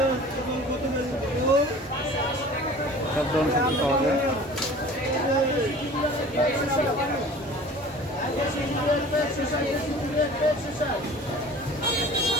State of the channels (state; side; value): normal; both; correlation 0.44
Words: সব ধরনের সবজি পাওয়া যায়।